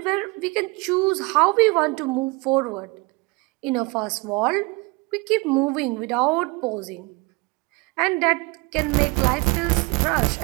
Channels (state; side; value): quieter; left; 26.4 dB